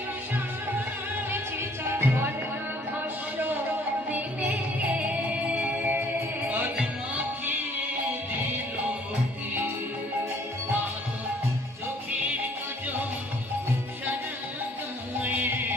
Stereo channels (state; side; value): normal; both; correlation 0.59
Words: চিতা, বর্ণভস্য দিলে আজ মাখিয়ে দিল হে, চোখের কাজল সারা গায়ে